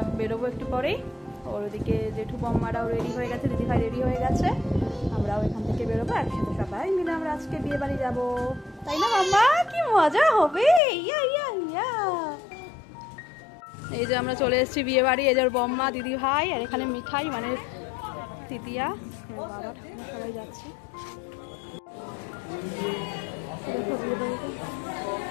বেরোবো একটু পরেই। ওর ওদিকে জেঠু বম্মারাও রেডি হয়ে গেছে, দিদিভাই রেডি হয়ে গেছে, আমরাও এখান থেকে বেরোবো একসাথে, সবাই মিলে আমরা আজকে বিয়ে বাড়ি যাবো, তাই না মাম্মা? কি মজা হবে! ইয়া ইয়া ইয়া। এই যে আমরা চলে এসেছি বিয়ে বাড়ি। এই যে বম্মা, দিদি ভাই, আর এখানে মিঠাই মানে তৃতীয়া, বাবা ঠাকুমা সবাই যাচ্ছে।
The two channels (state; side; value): drops out; right; at 10.8 s